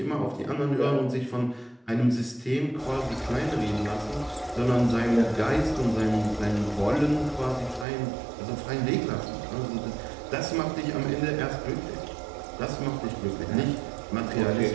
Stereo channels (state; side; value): drops out; left; at 7.9 s